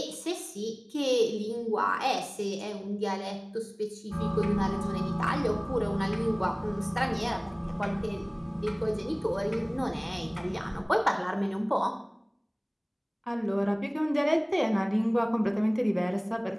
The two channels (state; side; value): identical; both; correlation 1.00